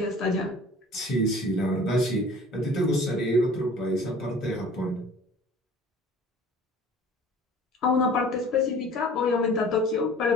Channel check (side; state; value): both; normal; correlation 0.47